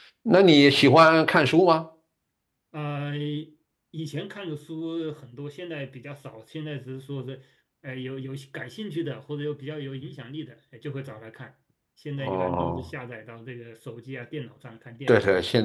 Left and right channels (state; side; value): identical; both; correlation 1.00